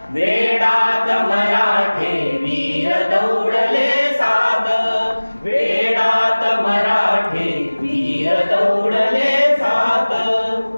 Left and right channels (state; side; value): inverted; both; correlation -1.00